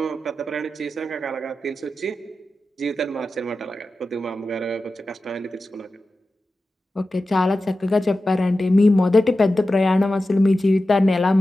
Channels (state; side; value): normal; both; correlation 0.93